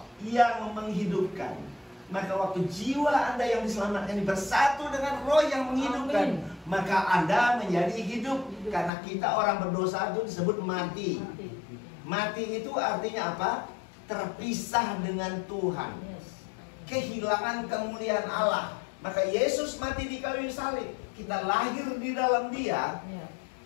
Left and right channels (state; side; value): drops out; right; at 8.9 s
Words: yang menghidupkan. Maka waktu jiwa Anda yang diselamatkan bersatu dengan roh yang menghidupkan, maka Anda menjadi hidup. Karena kita orang berdosa itu disebut mati. Mati itu artinya apa? Terpisah dengan Tuhan. Kehilangan kemuliaan Allah. Maka Yesus mati di kayu salib. Kita lahir di dalam Dia.